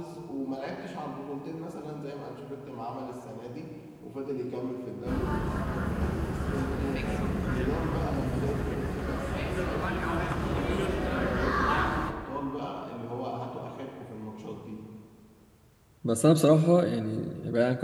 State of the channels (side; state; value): both; identical; correlation 1.00